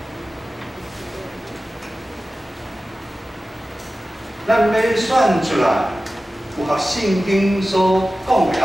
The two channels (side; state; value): both; normal; correlation 0.95